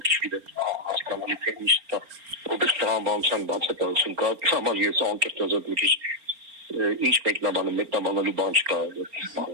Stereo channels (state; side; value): late; left; 4.3 ms